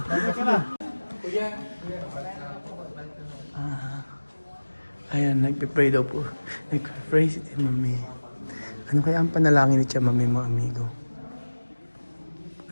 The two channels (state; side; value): inverted; both; correlation -1.00